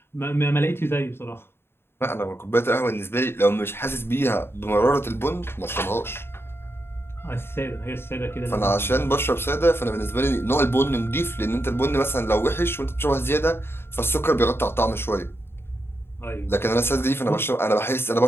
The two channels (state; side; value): late; right; 0.11 ms